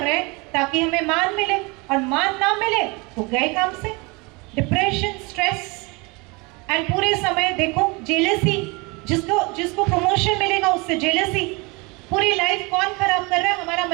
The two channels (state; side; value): quieter; left; 27.3 dB